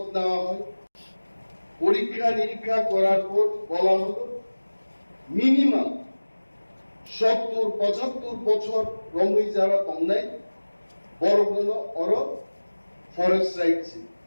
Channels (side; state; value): both; inverted; correlation -1.00